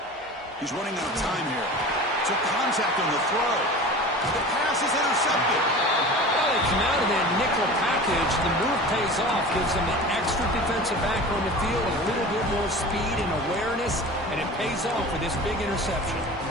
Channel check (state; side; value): normal; both; correlation 0.36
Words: He's running out of time here. Took contact on the throw. The pass is intercepted. Well, they come out of that nickel package. The move pays off. Gives them an extra defensive back on the field, a little bit more speed and awareness, and it pays off with this big interception.